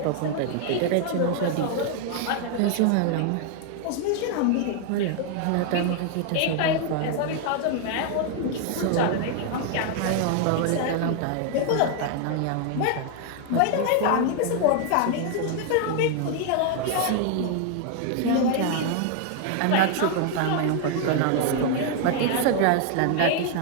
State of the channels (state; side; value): different; both; correlation 0.00